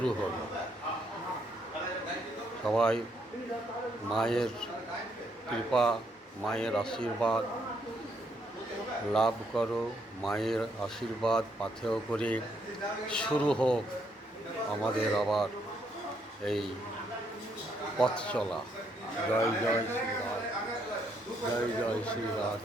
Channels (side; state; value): both; normal; correlation 0.73